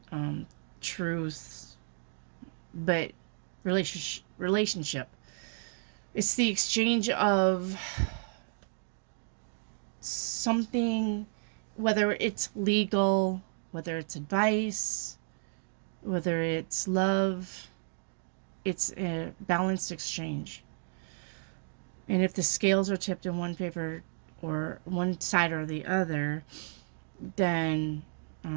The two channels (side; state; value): left; silent; digital silence